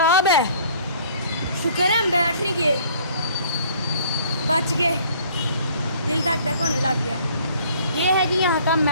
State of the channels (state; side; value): inverted; both; correlation -0.56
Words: है। शुक्र है हम बैठ नहीं गए, बच गए, दिल धक धक होने लग गया। ये है जी यहाँ का